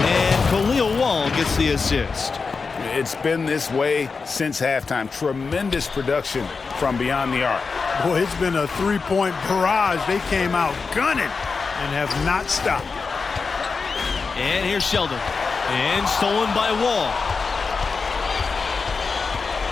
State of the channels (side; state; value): right; quieter; 4.7 dB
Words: Khalil Wall gets the assist. It's been this way since halftime. Tremendous production from beyond the arc. Boy, it's been a three-point barrage. They came out gunning and have not stopped. And here's Sheldon. And stolen by Wall.